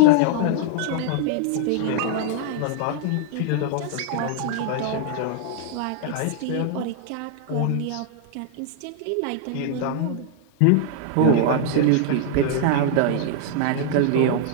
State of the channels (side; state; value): both; different; correlation 0.00